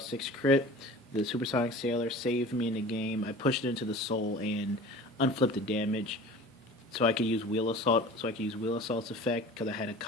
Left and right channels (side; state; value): both; normal; correlation 0.40